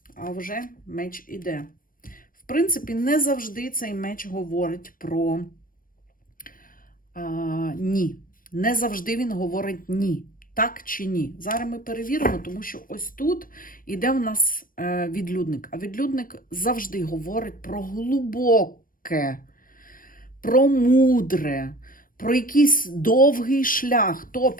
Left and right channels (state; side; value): late; right; 0.41 ms